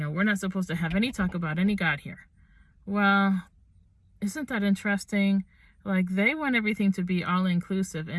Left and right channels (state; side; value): identical; both; correlation 1.00